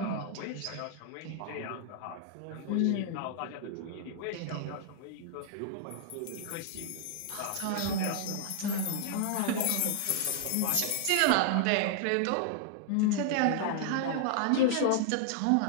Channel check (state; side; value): different; both; correlation -0.01